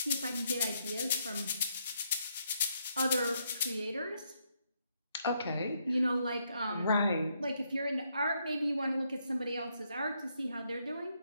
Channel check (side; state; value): both; inverted; correlation -0.76